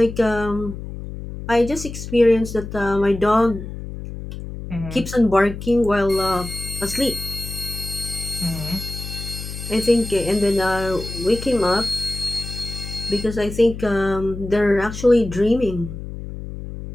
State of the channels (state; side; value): noise; left; hum, 9 dB below the sound